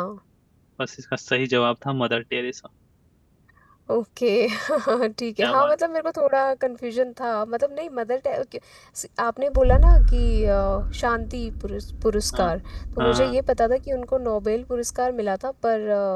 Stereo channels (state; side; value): identical; both; correlation 1.00